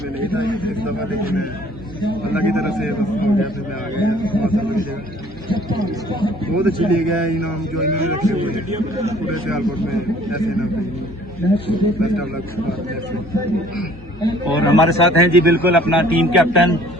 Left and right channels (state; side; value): normal; both; correlation 0.55